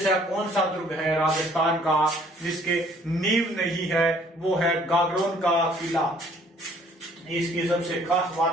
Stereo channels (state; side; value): normal; both; correlation 0.59